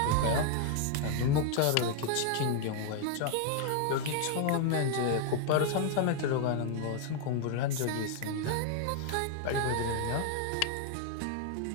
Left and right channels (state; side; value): different; both; correlation 0.00